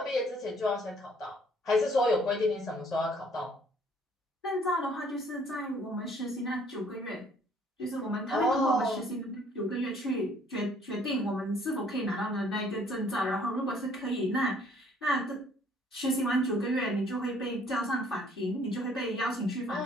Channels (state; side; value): normal; both; correlation 0.60